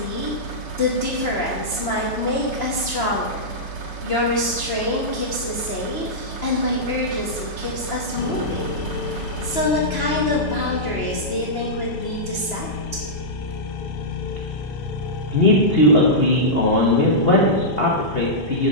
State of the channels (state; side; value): normal; both; correlation -0.12